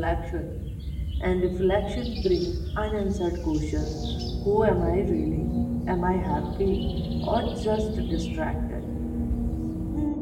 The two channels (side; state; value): both; identical; correlation 1.00